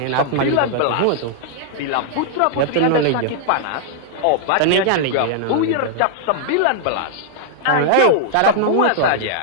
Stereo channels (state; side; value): different; both; correlation -0.01